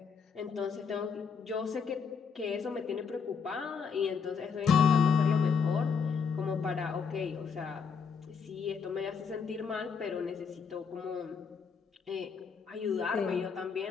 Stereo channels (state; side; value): quieter; right; 5.9 dB